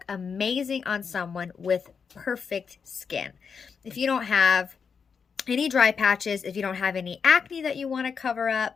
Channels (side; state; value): right; quieter; 6.1 dB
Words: amazing on someone with perfect skin. If you don't have any dry patches, if you don't have any acne that you want to cover